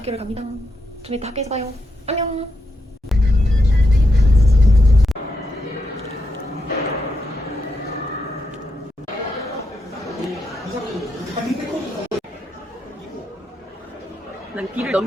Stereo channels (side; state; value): both; normal; correlation 0.83